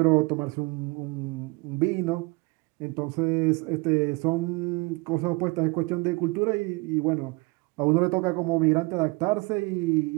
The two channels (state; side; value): quieter; left; 26.3 dB